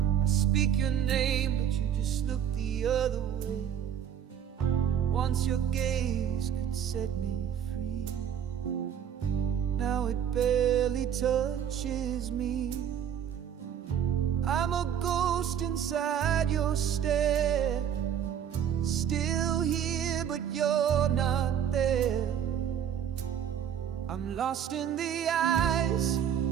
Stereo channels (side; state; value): left; quieter; 9.1 dB